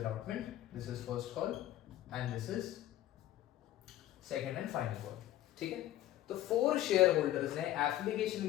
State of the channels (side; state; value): right; quieter; 13.8 dB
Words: this is first call and this is second and final call. ठीक है, तो 4 शेयर होल्डर्स ने एप्लीकेशन